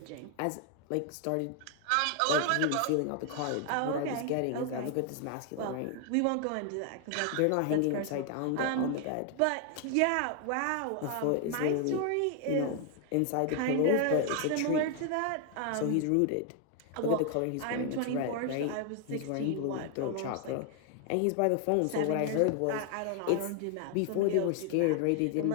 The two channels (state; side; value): different; both; correlation 0.00